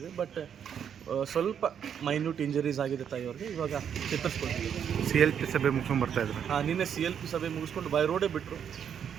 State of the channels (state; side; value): quieter; left; 8.3 dB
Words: ಬಟ್ ಸ್ವಲ್ಪ ಮೈನ್ಯೂಟ್ ಇಂಜರೀಸ್ ಆಗಿದೆ ತಾಯಿಯವ್ರಿಗೆ. ಇವಾಗ ಚೇತರಿಸ್ಕೊಳ್ತೀವಿ. CLP ಸಭೆ ಮುಗಿಸ್ಕೊಂಡು ಬರ್ತಾಯಿದ್ರು. ನಿನ್ನೆ CLP ಸಭೆ ಮುಗಿಸ್ಕೊಂಡು ಬೈ ರೋಡೇ ಬಿಟ್ಟರು.